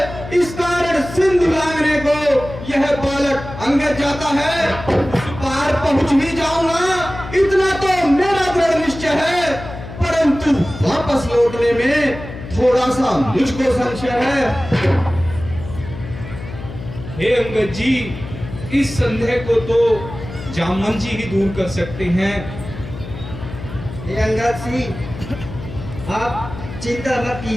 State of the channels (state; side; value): noise; left; hum, 11 dB below the sound